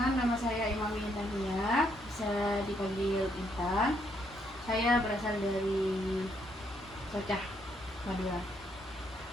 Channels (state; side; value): normal; both; correlation 0.73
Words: nama saya Imam Intan Nia, bisa dipanggil Intan. Saya berasal dari Socah, Madura.